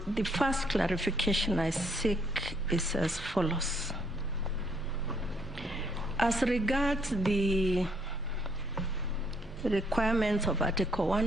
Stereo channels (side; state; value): both; normal; correlation 0.69